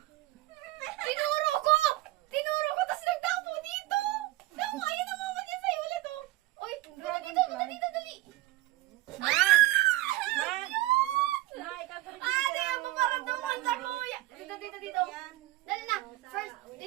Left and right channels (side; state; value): left; quieter; 17.4 dB